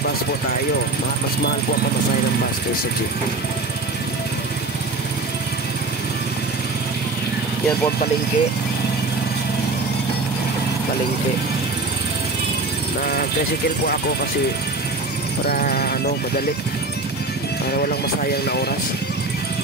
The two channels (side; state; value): left; quieter; 3.3 dB